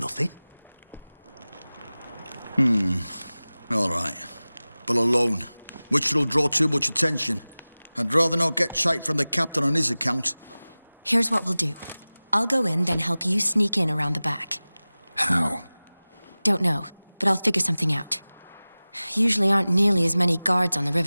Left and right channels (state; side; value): inverted; both; correlation -0.98